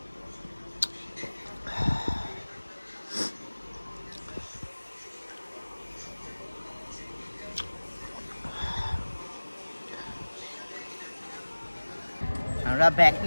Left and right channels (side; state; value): both; inverted; correlation -1.00